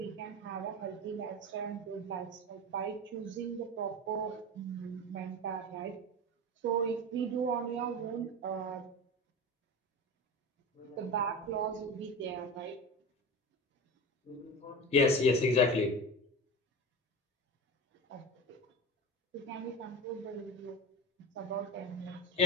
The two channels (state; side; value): normal; both; correlation 0.27